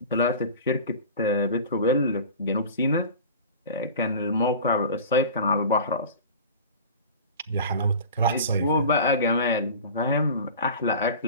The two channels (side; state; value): both; inverted; correlation -0.37